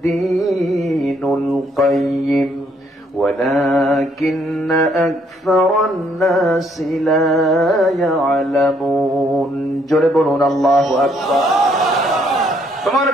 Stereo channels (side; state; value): both; normal; correlation 0.68